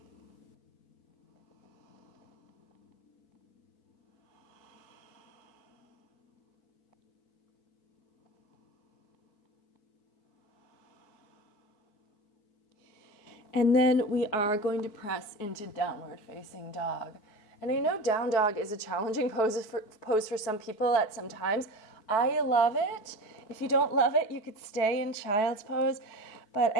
And then we are going to press into downward facing dog. And I know down dog is a challenging pose for some people at some times. I love it. If you don't love it, you could stay in child's pose. But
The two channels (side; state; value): right; late; 4.6 ms